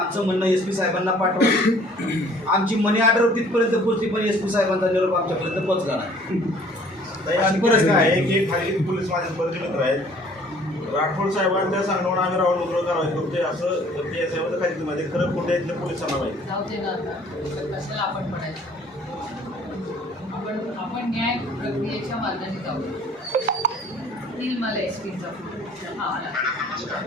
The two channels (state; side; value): normal; both; correlation 0.55